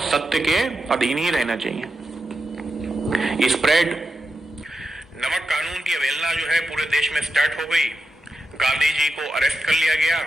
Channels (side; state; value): both; normal; correlation 0.89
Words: सत्य के अधीन ही रहना चाहिए। स्प्रेड नमक कानून की अवहेलना जो है पूरे देश में स्टार्ट हो गई। गांधी जी को अरेस्ट कर लिया गया,